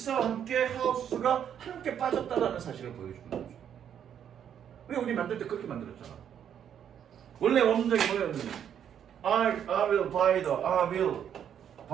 함께 하우스가 함께 빠졌다라는 사실을 보여주는 거죠. 왜 우리 만들 때 그렇게 만들었잖아. 원래 원문장이 뭐였는지 I will buy the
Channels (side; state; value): left; quieter; 9.0 dB